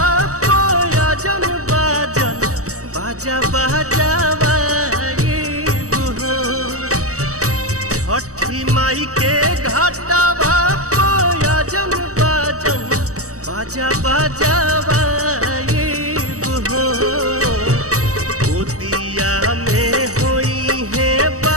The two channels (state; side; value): late; left; 0.65 ms